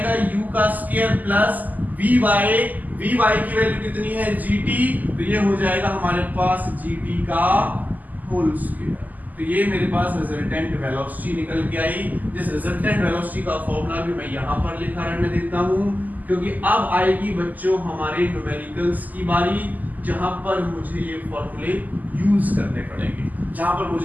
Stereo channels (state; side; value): late; left; 0.081 ms